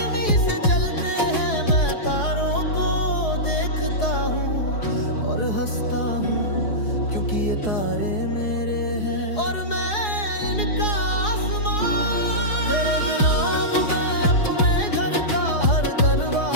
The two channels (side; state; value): right; late; 4.7 ms